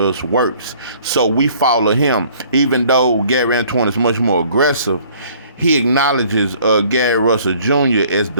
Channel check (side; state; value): both; inverted; correlation -0.56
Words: works. So we follow him. Even though Gary Antoine is much more aggressive, he acknowledges Gary Russell Jr. as